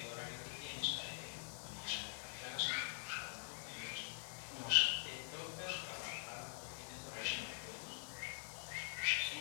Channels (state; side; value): silent; right; digital silence